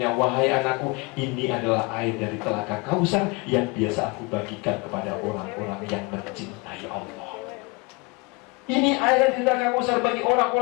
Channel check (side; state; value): right; quieter; 27.4 dB